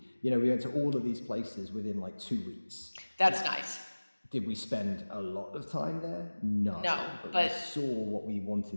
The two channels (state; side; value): inverted; both; correlation -1.00